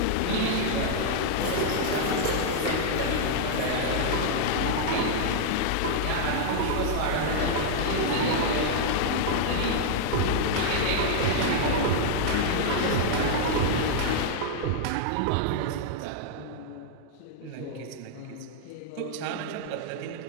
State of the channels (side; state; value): both; different; correlation -0.01